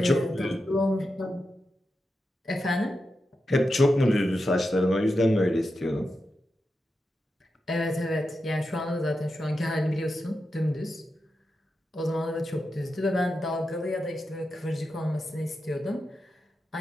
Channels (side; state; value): both; normal; correlation 0.89